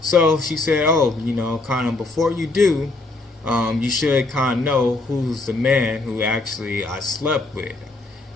she said, oh, kind of before you do, you should kind of know who's the man who actually I slept with.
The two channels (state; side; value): quieter; right; 3.2 dB